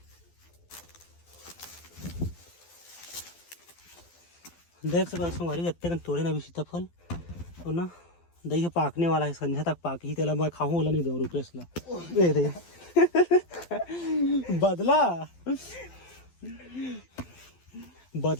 देख सकते संगवारी इतने तोड़े ना भी सीताफल, और ना दही पाकने वाला है, संध्या तक पाक ही तेला मैं खाऊं वाला नहीं दो रुपेश ला दे बदला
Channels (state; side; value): late; right; 12 ms